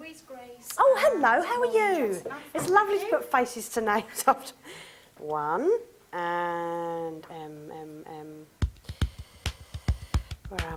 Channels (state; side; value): identical; both; correlation 1.00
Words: Grace. Oh, hello. How are you? It's lovely to put faces to names after. 1 and Where